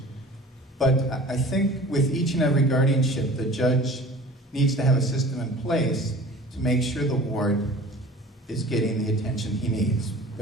But I think with each and every guardianship, the judge needs to have a system in place to make sure the ward is getting the attention he needs.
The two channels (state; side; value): normal; both; correlation 0.43